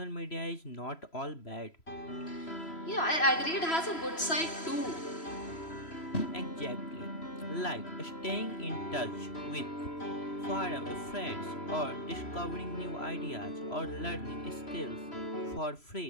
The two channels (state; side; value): late; right; 3.0 ms